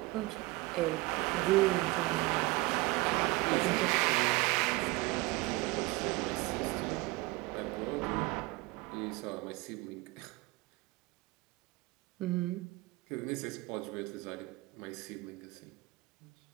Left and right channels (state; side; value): quieter; left; 22.1 dB